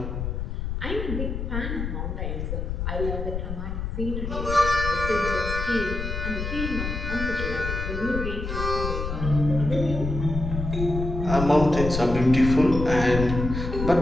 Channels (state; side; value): noise; left; rumble, 4 dB below the sound